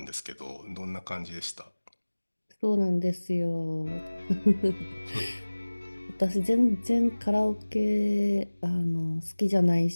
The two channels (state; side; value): inverted; both; correlation -1.00